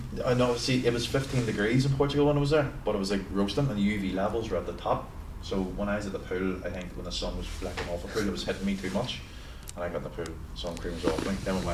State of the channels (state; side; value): identical; both; correlation 1.00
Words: know. See, it was 15 degrees in Portugal when I was there, but it was like roasting, and the UV levels were at the top. So when I was at the pool, I think when the sun was flecking off the pool, it was hitting me too much, and I got in the pool. Sun cream was off me. Then we